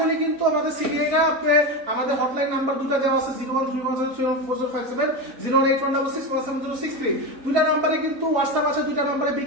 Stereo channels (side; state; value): left; late; 3.9 ms